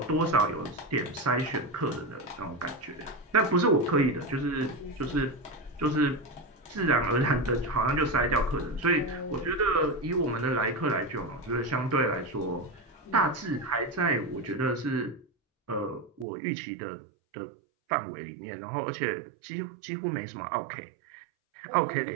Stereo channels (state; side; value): drops out; left; at 16.2 s